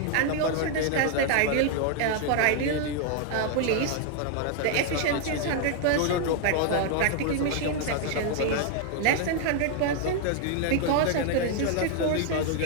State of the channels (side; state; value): both; different; correlation 0.00